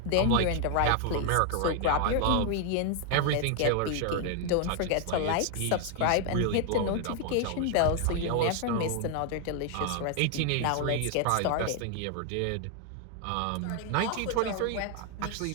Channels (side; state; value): both; different; correlation 0.00